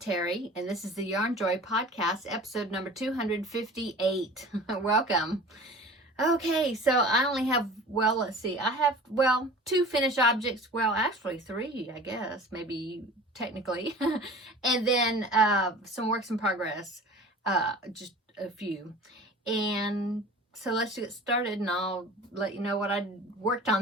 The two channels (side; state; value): both; normal; correlation 0.41